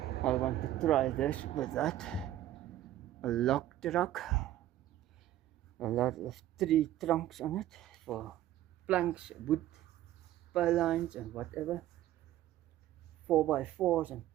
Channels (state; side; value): quieter; left; 13.3 dB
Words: I want to try this with that. A lock truck. A lot of 3 trunks on it for planks, wood, pylons and whatever. 4x4s and